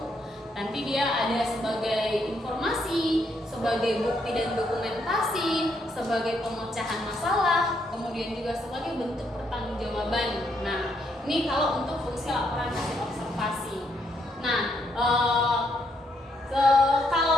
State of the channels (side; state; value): both; normal; correlation 0.74